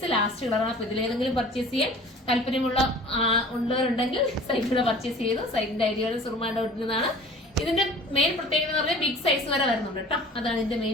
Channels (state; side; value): normal; both; correlation 0.46